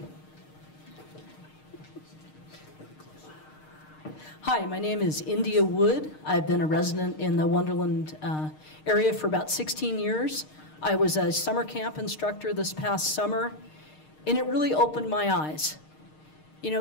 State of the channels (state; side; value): late; right; 6.5 ms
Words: Hi, my name is India Wood. I've been a resident in the Wonderland area for about 16 years. I was a summer camp instructor this past summer, and it really opened my eyes. You